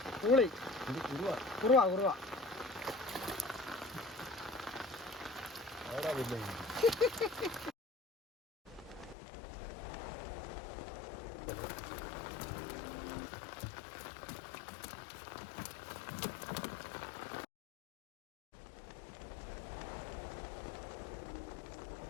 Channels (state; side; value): drops out; right; at 9.2 s